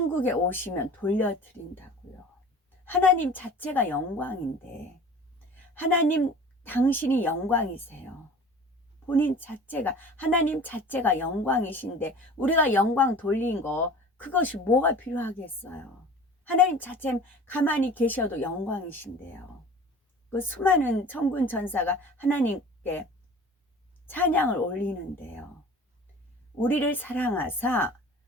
오시면 돌려드린다고요. 하나님 자체가 영광인데 하나님 당신이 영광이세요. 본인 자체가 하나님 자체가 영광이신데 우리가 영광 돌린 거 그것이 뭐가 필요하겠어요. 하나님 자체 가만히 계셔도 영광이신데요. 그 수많은 천군 천사가 하나님께 찬양을 올리는데요. 우리를 사랑하사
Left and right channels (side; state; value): both; normal; correlation 0.42